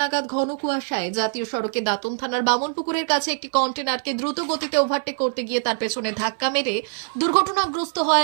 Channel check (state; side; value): silent; left; 60 dB below the other